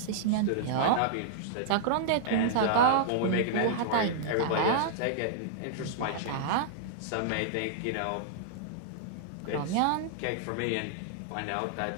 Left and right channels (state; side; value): different; both; correlation -0.01